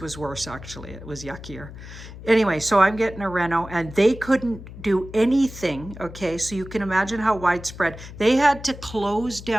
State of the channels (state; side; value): noise; left; hum, 14 dB below the sound